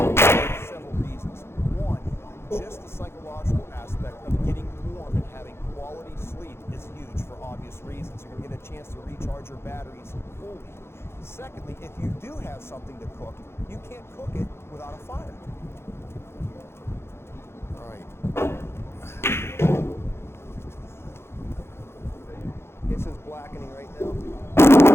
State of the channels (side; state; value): right; late; 0.12 ms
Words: for several reasons. One, just the psychological aspect of getting warm and having quality sleep is huge for obvious reasons. You're going to get a chance to recharge your batteries fully. Secondly, if you do have something to cook, you can't cook it without a fire. All right. It's just blackening right now.